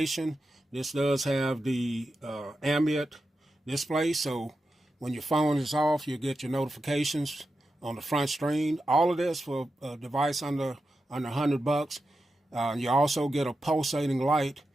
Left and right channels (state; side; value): normal; both; correlation 0.89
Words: this does have the ambient display. So when your phone is off, you get your notifications on the front screen. All of this for a device under $100. You also get a pulsating light